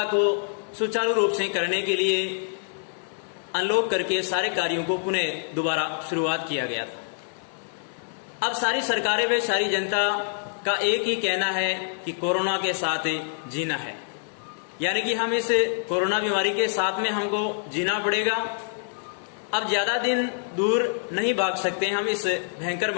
को सुचारू रूप से करने के लिए अनलॉक करके सारे कार्यों को पुनः दोबारा शुरुआत किया गया था। अब सारी सरकारें व सारी जनता का एक ही कहना है कि कोरोना के साथ जीना है, यानी कि हम इस कोरोना बीमारी के साथ में हमको जीना पड़ेगा। अब ज्यादा दिन दूर नहीं भाग सकते हम इस भयंकर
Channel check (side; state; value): right; silent; digital silence